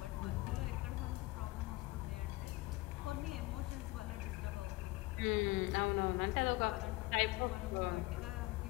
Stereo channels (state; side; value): quieter; right; 21.2 dB